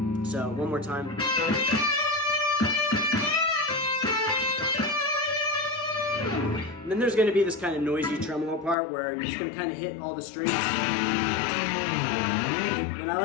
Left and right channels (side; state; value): right; drops out; at 8.8 s